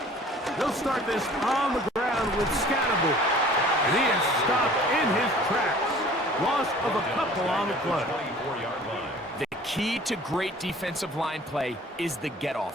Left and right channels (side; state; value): both; normal; correlation 0.49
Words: They'll start this on the ground with Scannable. And he is stopped in his tracks. play. 24-yard line. The key to great defensive line play is the